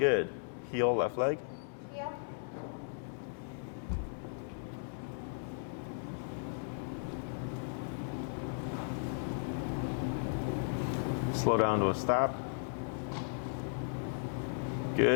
Heel, left leg. Heel. Slow down to a stop.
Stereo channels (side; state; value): right; silent; digital silence